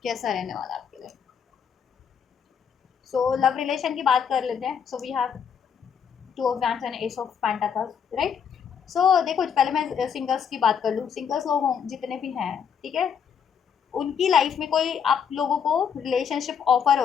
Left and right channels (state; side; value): quieter; right; 7.3 dB